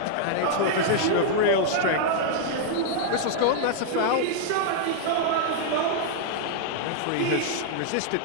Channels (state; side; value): different; both; correlation -0.01